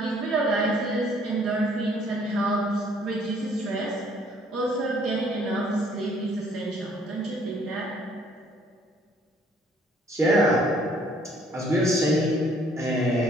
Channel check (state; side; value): normal; both; correlation 0.62